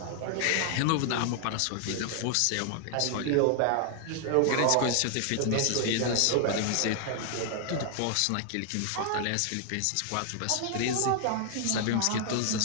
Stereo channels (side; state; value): both; different; correlation 0.00